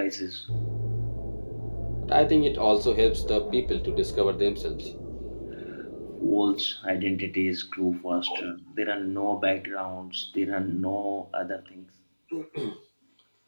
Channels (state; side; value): inverted; both; correlation -1.00